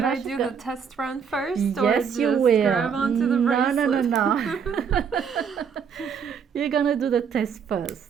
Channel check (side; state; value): left; quieter; 6.9 dB